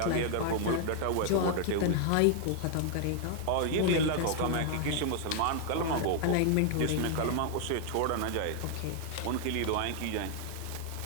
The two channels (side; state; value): both; different; correlation 0.00